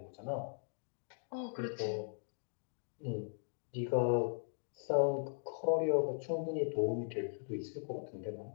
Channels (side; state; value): right; silent; digital silence